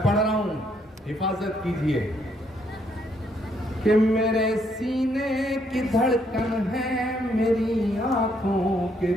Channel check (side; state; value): both; normal; correlation 0.72